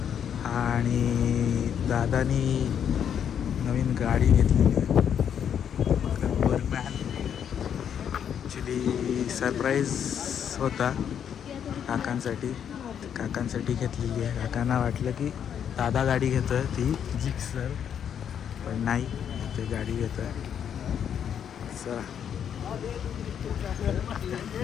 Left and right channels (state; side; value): quieter; right; 8.6 dB